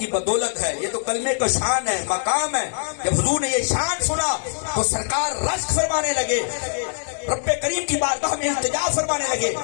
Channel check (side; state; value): right; silent; digital silence